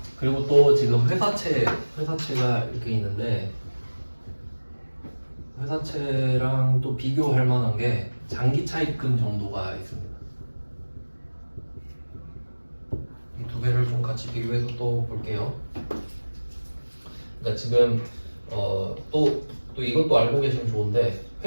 그리고 또 지금 회사채가 이렇게 있는데 회사채랑 또 비교할 만한 게 장기 차입금 정도가 있습니다. 이 두 개를 좀 같이 비교해서 또 볼게요. 그러니까 지금 또 이것도 알고 계시면 좋은데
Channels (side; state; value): both; inverted; correlation -1.00